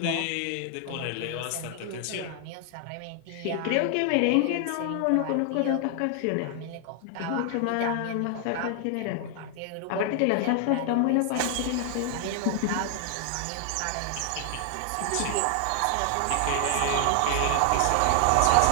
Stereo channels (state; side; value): different; both; correlation 0.00